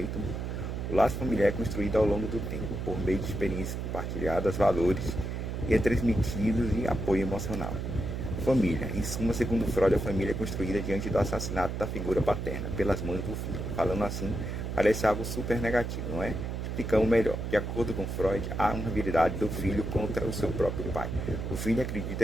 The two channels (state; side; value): noise; right; hum, 4 dB below the sound